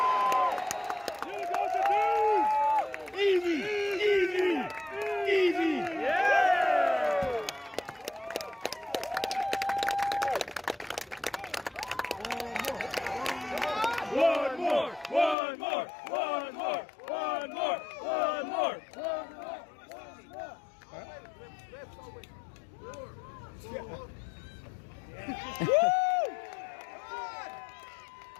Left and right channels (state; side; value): drops out; right; at 15.4 s